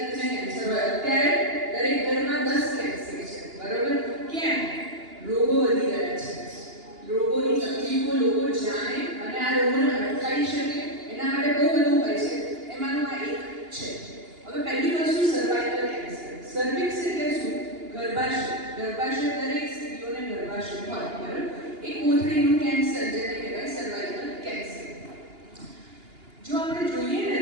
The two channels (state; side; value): late; left; 2.9 ms